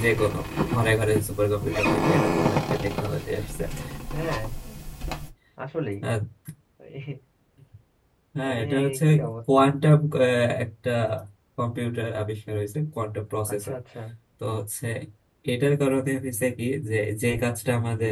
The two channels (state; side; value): identical; both; correlation 1.00